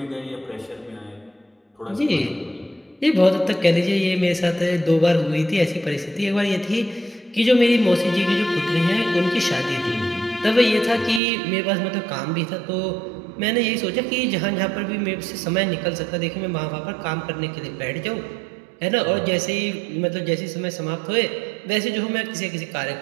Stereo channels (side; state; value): left; drops out; at 11.2 s